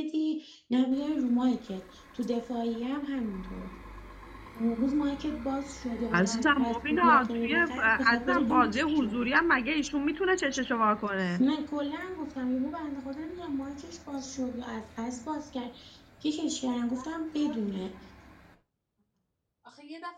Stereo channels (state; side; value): identical; both; correlation 1.00